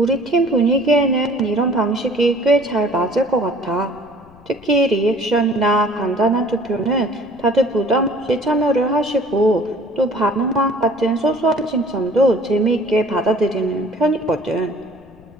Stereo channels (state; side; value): noise; left; rumble, 26 dB below the sound